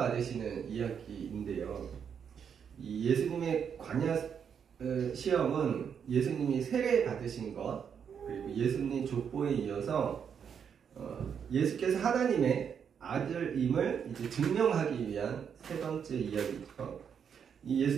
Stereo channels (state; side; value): quieter; left; 7.4 dB